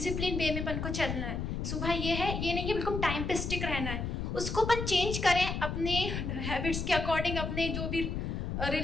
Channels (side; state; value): left; noise; rumble, 3 dB below the sound